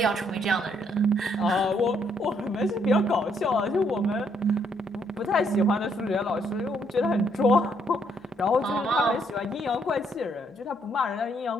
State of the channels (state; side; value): normal; both; correlation 0.71